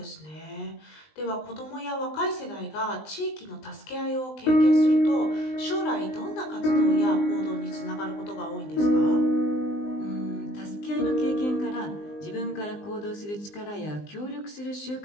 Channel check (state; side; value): late; right; 20 ms